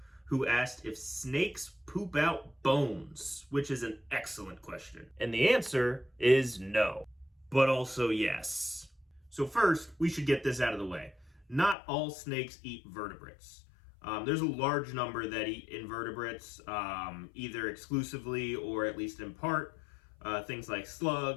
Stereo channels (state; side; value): drops out; right; at 11.8 s